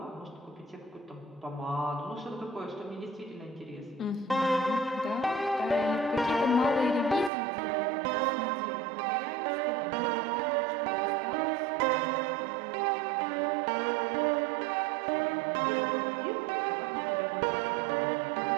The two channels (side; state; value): left; drops out; at 7.3 s